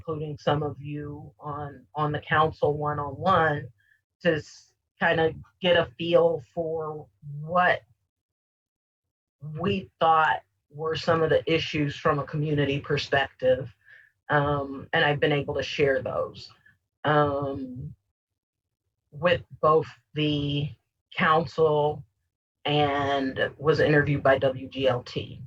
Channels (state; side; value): identical; both; correlation 1.00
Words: some of you on the council one-on-one, to kind of get a feel for what we thought were some of the issues from a community perspective. And I've been able to share those with both the council and was interviewed by WGLT.